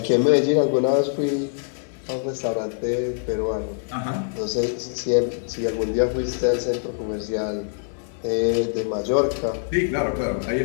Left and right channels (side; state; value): right; silent; 55 dB below the other